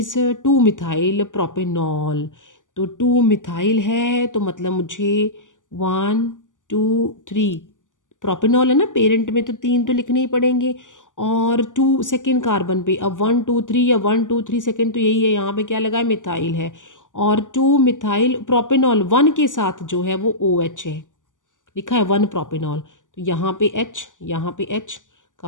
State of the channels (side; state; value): right; late; 0.87 ms